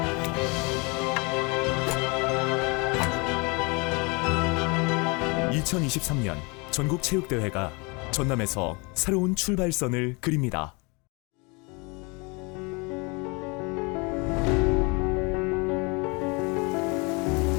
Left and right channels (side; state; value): right; quieter; 29.6 dB